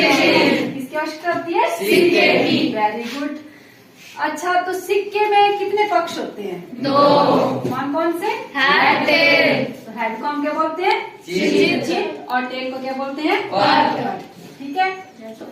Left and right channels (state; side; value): identical; both; correlation 1.00